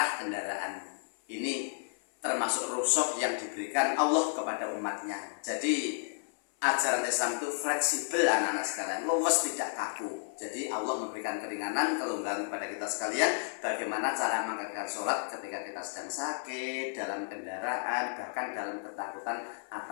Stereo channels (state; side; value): silent; right; 56 dB below the other